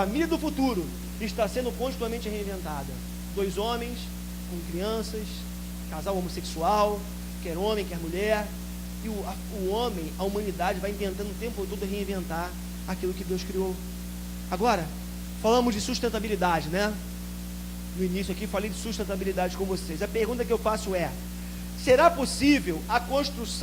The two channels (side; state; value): both; identical; correlation 1.00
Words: do futuro está sendo continuamente reinventada. 2 homens com crianças, casal homossexual, quer homem, quer mulher. E o homem, a humanidade vai tentando o tempo todo reinventar aquilo que Deus criou. Agora, falamos de sustentabilidade, né? No início aqui falei de sustentabilidade com vocês. A pergunta que eu faço é: Será possível a